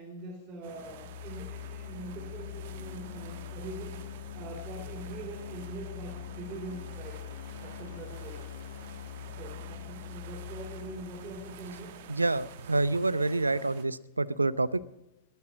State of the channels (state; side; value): inverted; both; correlation -0.77